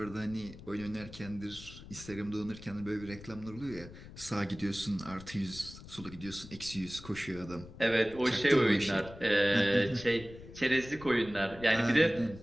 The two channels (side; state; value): left; noise; rumble, 16 dB below the sound